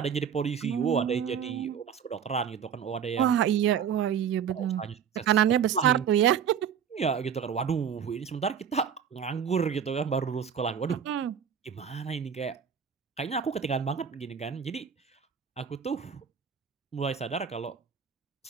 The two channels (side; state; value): left; quieter; 7.8 dB